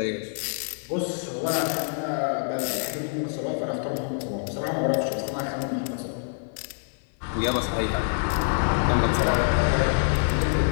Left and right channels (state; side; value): silent; right; 61 dB below the other